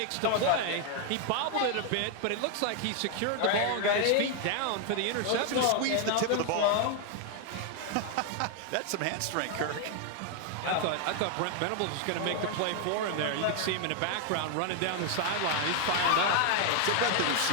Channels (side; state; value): both; different; correlation 0.00